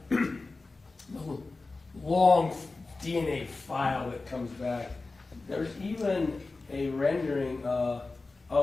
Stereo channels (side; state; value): right; quieter; 3.6 dB